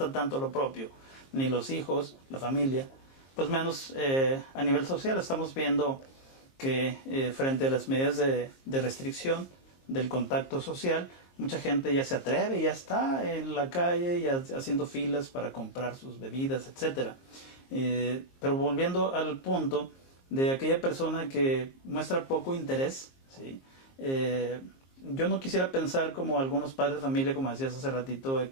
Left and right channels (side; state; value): right; late; 22 ms